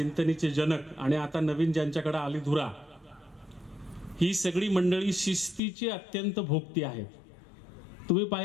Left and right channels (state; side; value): drops out; right; at 5.6 s